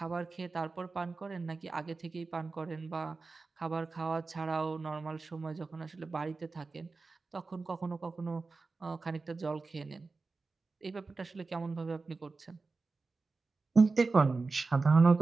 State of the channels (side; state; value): left; quieter; 4.0 dB